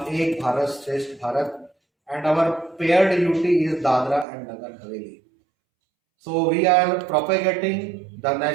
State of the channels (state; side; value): drops out; left; at 4.2 s